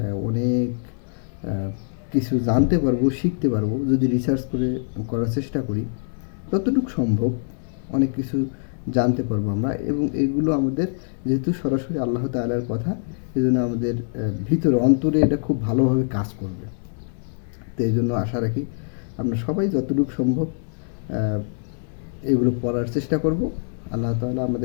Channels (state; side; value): silent; right; 63 dB below the other